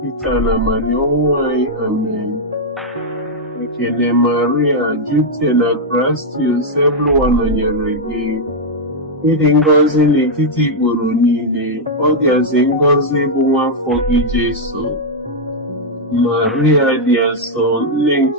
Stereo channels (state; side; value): normal; both; correlation -0.03